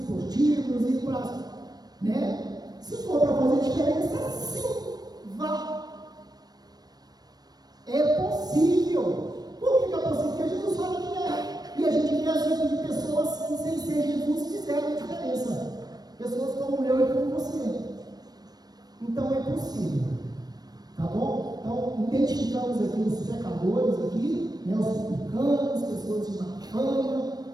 ir para. Né? Se for para fazer diferença, sim, vá. É possível. Por que é possível? Porque Jesus fala que é. E a gente vê exemplos de pessoas que, sem ser Jesus, fizeram diferença. Pessoas como eu e como você. Então é possível. Tá bom? Então, identificamos aqui os pecadores aqui, né, os publicanos, pessoas de má fama,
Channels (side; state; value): left; late; 0.19 ms